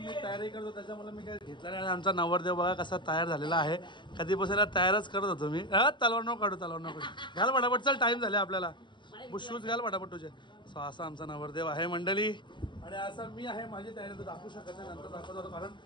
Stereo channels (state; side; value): late; right; 0.22 ms